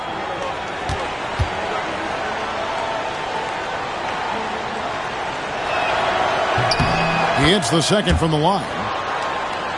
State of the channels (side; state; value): both; identical; correlation 1.00